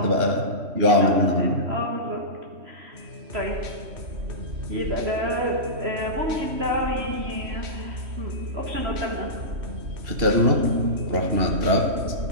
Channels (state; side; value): late; left; 3.1 ms